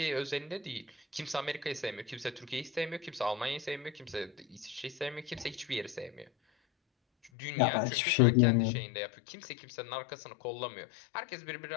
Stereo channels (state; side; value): drops out; right; at 7.3 s